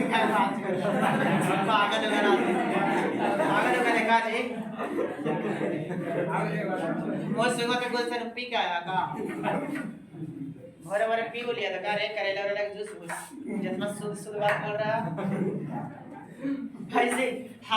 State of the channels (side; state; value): both; identical; correlation 1.00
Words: पागल देखा जी, वो सुबह के गोल से पी के आया का, भरे भरे पी लिया था का रे, करेला वाला जूस जितना शुद्ध बात बोल रहा ऐसे।